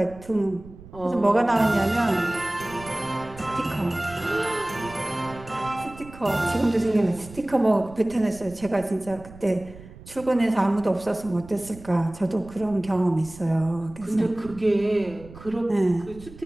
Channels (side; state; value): right; noise; rumble, 18 dB below the sound